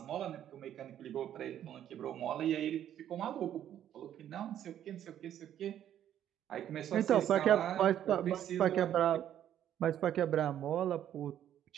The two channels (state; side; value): quieter; left; 10.7 dB